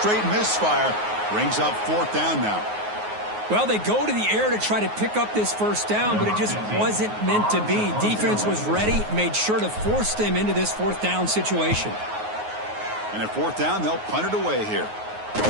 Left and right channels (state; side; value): late; left; 9.5 ms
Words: misfire. Brings up fourth down now. Well, they go to the air to try to pick up this first down, but it just wasn't meant to be. Defense was ready, made sure to force them into this fourth down situation. And at fourth down, they'll punt it away here.